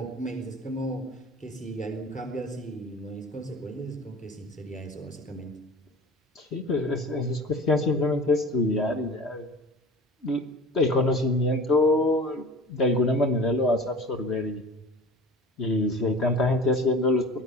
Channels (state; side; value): normal; both; correlation 0.40